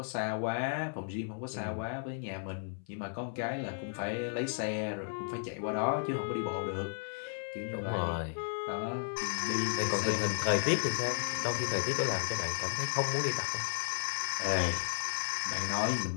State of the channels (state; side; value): silent; right; 55 dB below the other